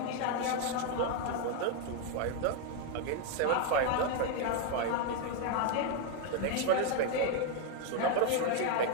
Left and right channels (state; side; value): different; both; correlation 0.01